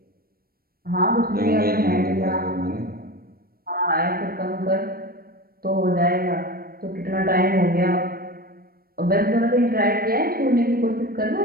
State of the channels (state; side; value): late; left; 0.44 ms